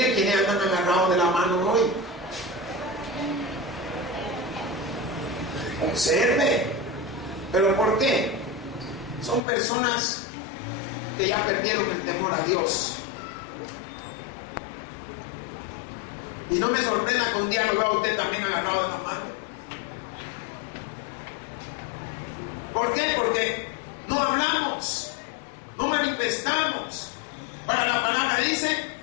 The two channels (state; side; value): drops out; right; at 9.4 s